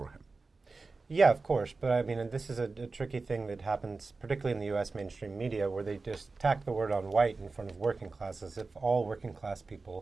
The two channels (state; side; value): quieter; left; 3.9 dB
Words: him. Yeah, of course, but I mean, and this is a tricky thing that happens, particularly in the U.S. mainstream media, where they just tack the word on white in front of working class, as if all working class